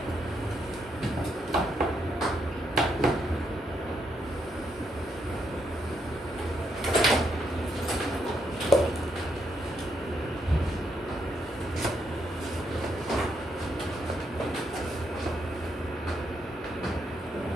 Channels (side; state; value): both; normal; correlation 0.77